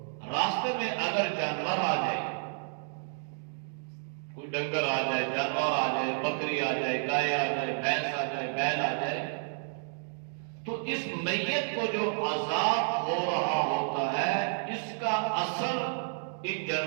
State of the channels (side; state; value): left; silent; digital silence